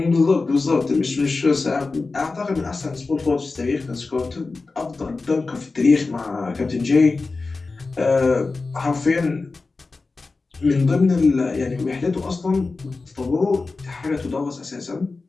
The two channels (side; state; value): right; quieter; 3.8 dB